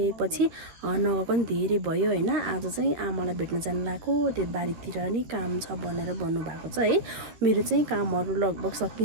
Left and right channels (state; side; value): late; left; 13 ms